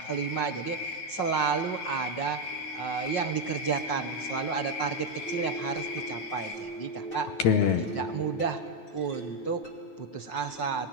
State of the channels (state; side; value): late; right; 9.2 ms